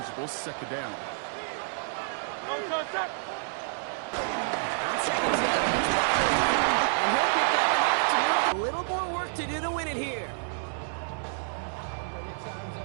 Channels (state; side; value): silent; left; digital silence